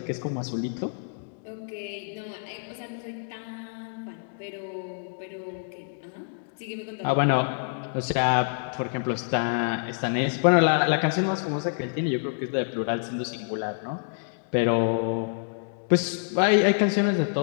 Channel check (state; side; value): silent; right; digital silence